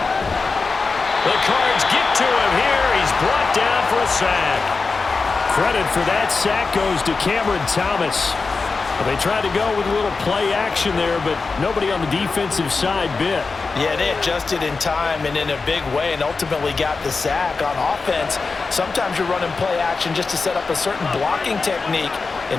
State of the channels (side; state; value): right; quieter; 4.3 dB